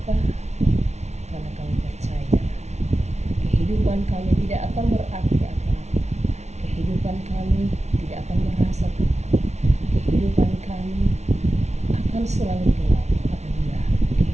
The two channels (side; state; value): left; late; 0.32 ms